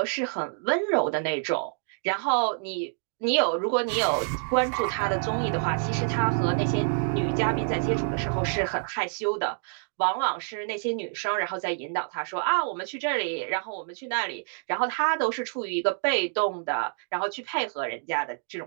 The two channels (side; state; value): left; silent; 60 dB below the other